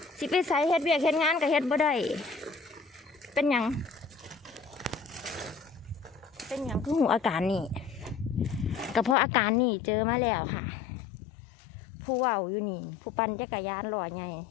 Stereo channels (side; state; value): right; drops out; at 9.2 s